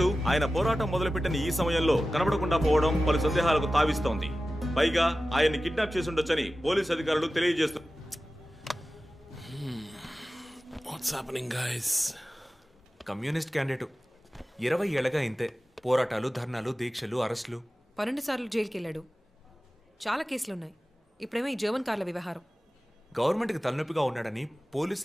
ఆయన పోరాటం మొదలుపెట్టిన ఈ సమయంలో కనబడకుండా పోవడం పలు సందేహాలకు తావిస్తోంది. పైగా ఆయన్ని కిడ్నాప్ చేసి ఉండొచ్చని పోలీసు అధికారులు తెలియజేస్తున్నారు. కమ్యూనిస్ట్ క్యాండిడేట్ 20 ఏళ్లగా ఇంతే. పోరాటాలు, ధర్నాలు, దీక్షలు, అరెస్టులు. 12 సార్లు జైలుకి వెళ్ళాడు. చాలా కేసులున్నాయి. ఇప్పుడేమో ఈ జర్మన్ కార్ల వ్యవహారం. గవర్నమెంట్కి తలనొప్పిగా ఉన్నాడని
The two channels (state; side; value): normal; both; correlation 0.95